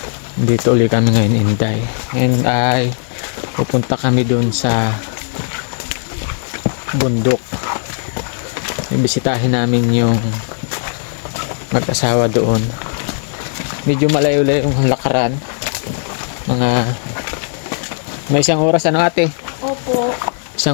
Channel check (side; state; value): right; silent; 68 dB below the other